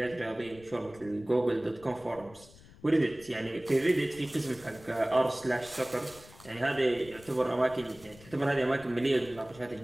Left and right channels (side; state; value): left; noise; rumble, 22 dB below the sound